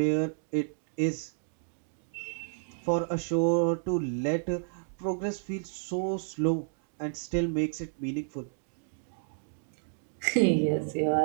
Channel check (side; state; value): left; silent; digital silence